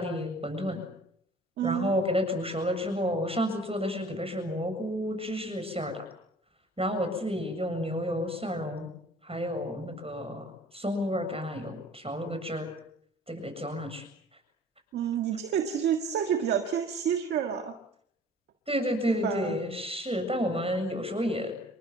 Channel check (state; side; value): normal; both; correlation 0.49